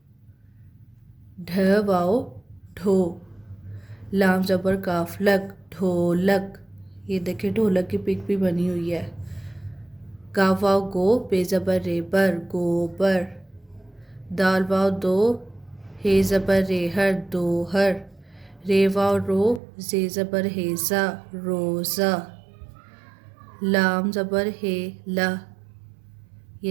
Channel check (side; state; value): left; drops out; at 19.6 s